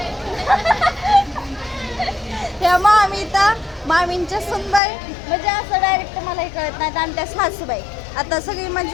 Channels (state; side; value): drops out; right; at 4.8 s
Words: ह्या मामींच्या सुनबाई म्हणजे असं डायरेक्ट मला हे कळत नाही. आणि त्या सासूबाई, आता सगळी